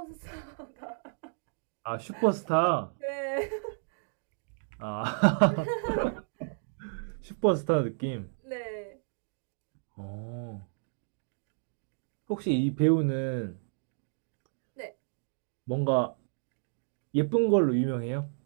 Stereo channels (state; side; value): silent; left; digital silence